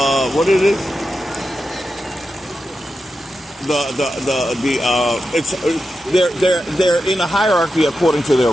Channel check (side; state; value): both; normal; correlation 0.90